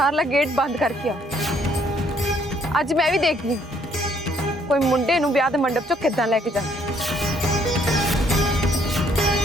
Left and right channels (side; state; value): both; normal; correlation 0.66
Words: गेट बंद करके आओ। अज मैं भी देखनी कोई मुंडे नूं ब्याह दे मंडप चों किदां लेके जा।